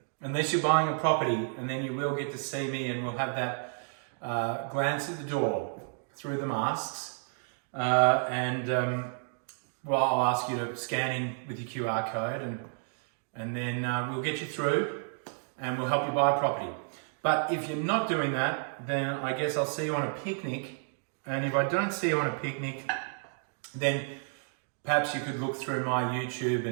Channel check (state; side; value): silent; left; 57 dB below the other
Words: unless you're buying a property, and then you will get to see me, and we'll have that glance at the door through the masks. Well, I'll ask you to scan in with your QR code, and then we'll get you through and we'll help you buy a property. But if you're not doing that, then I guess I'll see you on a picnic. And if I don't see you on a picnic, then perhaps you could look through my YouTube